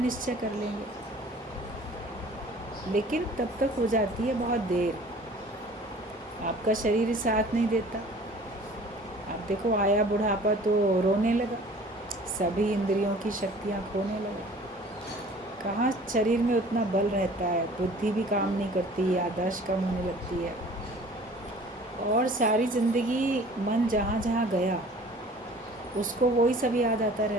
कर लेंगे, लेकिन तब तक हो जाती है बहुत देर। आपका शरीर ही साथ नहीं देता। आप देखो आया बुढ़ापा तो रोने लगा, सभी इंद्रियों की शक्तियाँ खोने लगा। कहाँ शरीर में उतना बल रहता है, बुद्धि भी काम नहीं करती, याददाश्त कम होने लगती है, और सारी ज़िंदगी मन जहाँ जहाँ गया उसको वही सब याद आता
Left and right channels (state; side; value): normal; both; correlation 0.49